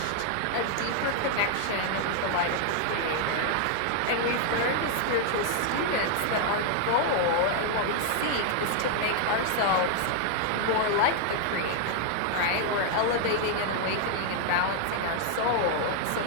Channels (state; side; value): different; both; correlation 0.00